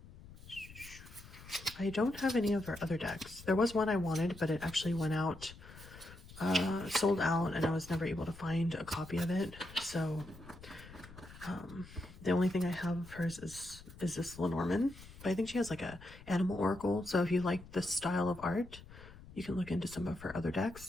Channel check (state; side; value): noise; left; rumble, 18 dB below the sound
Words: I don't have any of her other decks. There was one I wanted, but it actually went out, sold out, and I was never able to find a copy of it. So the only thing I have of hers is this Lenormand. But I think she has like a animal oracle. So if you like this style of art, you can look into some of her other